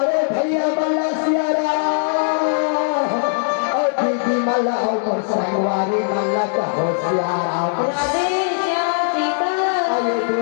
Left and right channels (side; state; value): right; silent; digital silence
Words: भैया मल्ला सियाराम और दीदी मल्ला और मोर संगवारी मल्ला कहो सियाराम